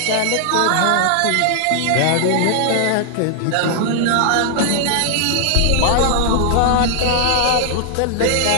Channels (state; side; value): different; both; correlation 0.00